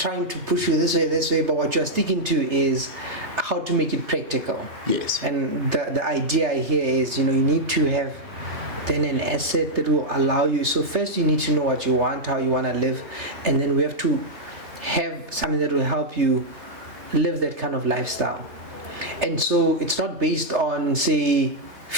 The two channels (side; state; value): left; late; 3.3 ms